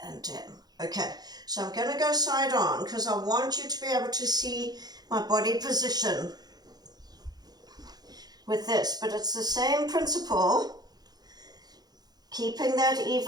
and down. Okay, so I'm going to go side on because I want you to be able to see my body position with this, but it's the same principle, keeping that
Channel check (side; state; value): left; late; 0.19 ms